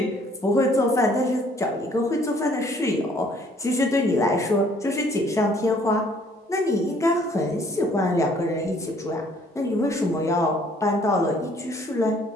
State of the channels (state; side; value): normal; both; correlation 0.60